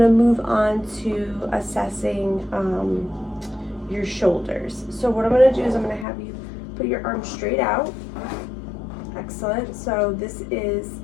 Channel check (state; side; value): drops out; right; at 6.1 s